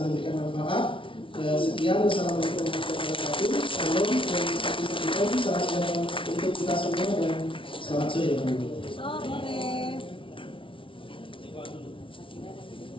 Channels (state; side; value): late; right; 0.25 ms